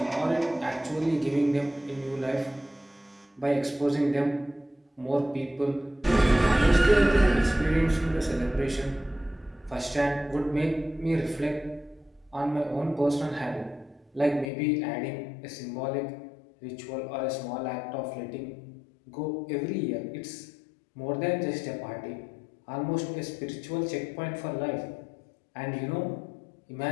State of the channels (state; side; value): drops out; right; at 14.5 s